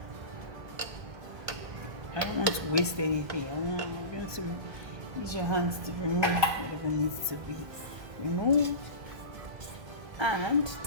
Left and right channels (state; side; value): late; left; 1.2 ms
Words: I don't want to waste anything. I'm going to use your hands to remove whatever needs to be removed. And